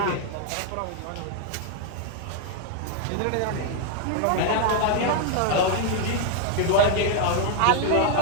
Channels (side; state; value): both; different; correlation 0.00